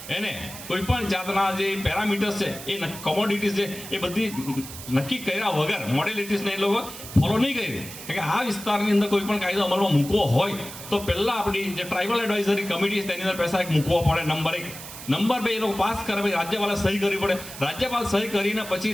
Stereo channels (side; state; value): right; noise; hiss, 12 dB below the sound